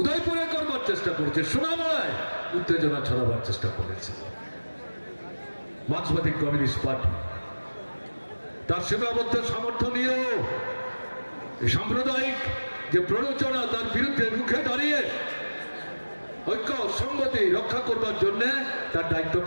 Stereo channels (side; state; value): both; inverted; correlation -1.00